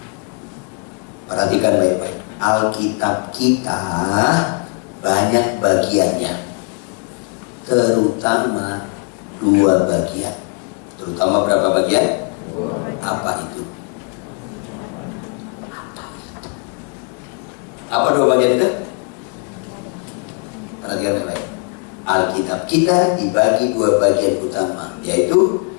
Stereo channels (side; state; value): right; quieter; 36.7 dB